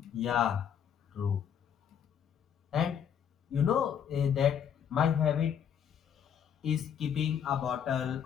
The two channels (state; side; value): quieter; right; 8.4 dB